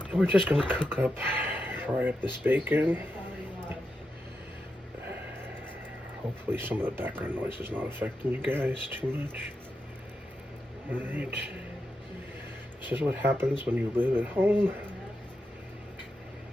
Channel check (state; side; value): normal; both; correlation 0.87